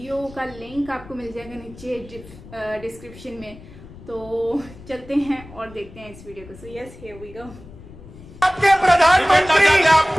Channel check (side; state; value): left; noise; rumble, 18 dB below the sound